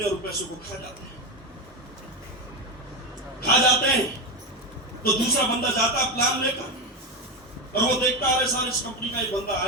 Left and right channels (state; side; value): normal; both; correlation 0.13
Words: हैं और पैसों को खा जाते हैं। तो दूसरा बंदा जाता है प्लान लेकर और वो देखता है सारे इस कंपनी का एक बंदा